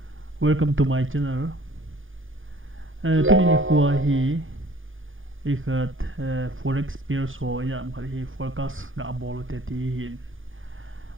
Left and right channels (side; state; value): left; late; 0.58 ms